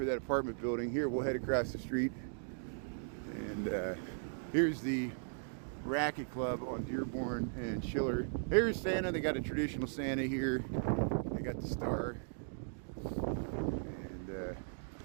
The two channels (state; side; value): silent; left; digital silence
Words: that apartment building. Here, we'll head across the street. And here's the Racket Club on Dearborn and Schiller. Here's Santa. They got a traditional Santa here. They got the star. And